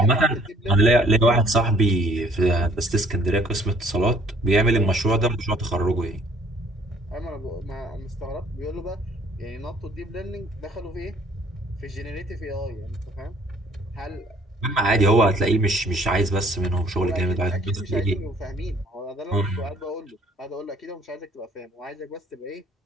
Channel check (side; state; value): both; normal; correlation 0.58